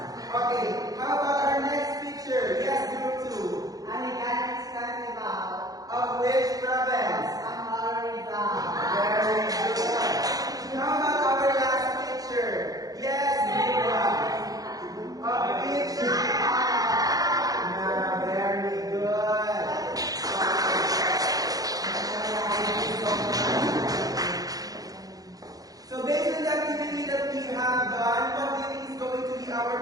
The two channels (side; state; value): left; late; 0.18 ms